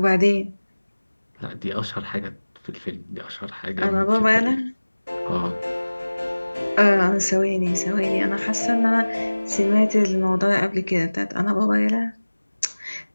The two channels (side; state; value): both; inverted; correlation -1.00